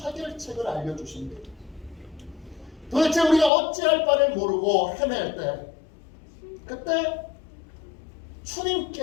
알려주십니다. 도대체 우리가 어찌할 바를 모르고 헤맬 때 그때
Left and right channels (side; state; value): right; drops out; at 3.5 s